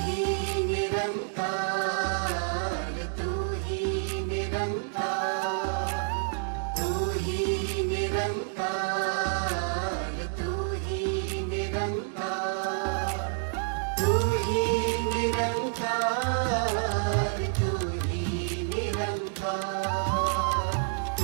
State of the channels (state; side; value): silent; left; digital silence